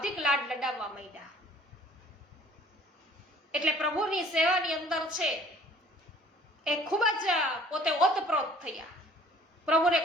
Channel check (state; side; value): normal; both; correlation 0.53